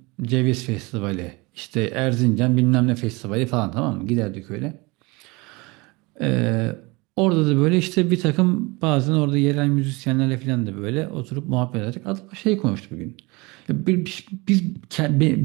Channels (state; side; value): quieter; left; 25.3 dB